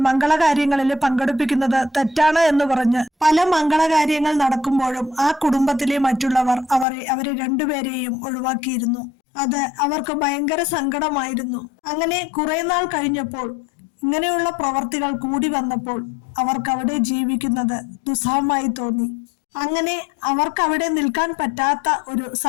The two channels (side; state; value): right; drops out; at 6.9 s